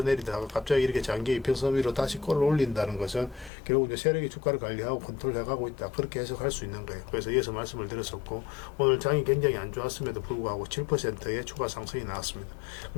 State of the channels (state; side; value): drops out; right; at 3.5 s